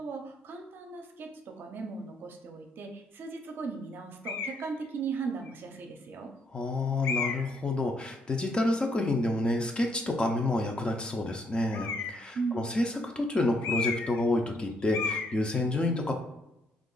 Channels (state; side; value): normal; both; correlation 0.71